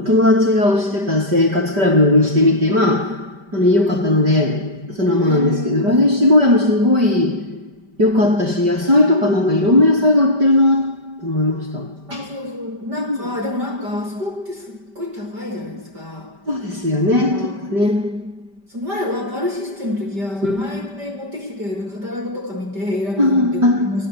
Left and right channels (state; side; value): late; left; 5.1 ms